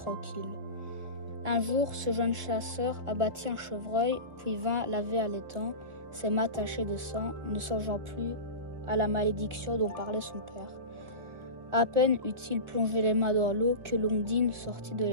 Un jour, ce jeune chasseur abattit un chevreuil, puis vint laver à l'étang, ses mains tachées de sang, ne songeant plus à la malédiction dont parlait son père. À peine eut-il plongé les mains dans l'eau que l'Ondine sortit de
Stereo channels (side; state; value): left; late; 1.4 ms